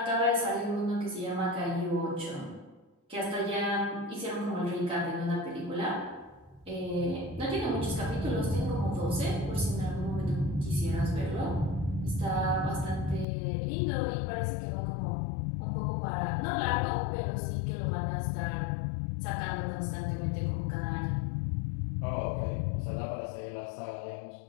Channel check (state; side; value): drops out; right; at 13.2 s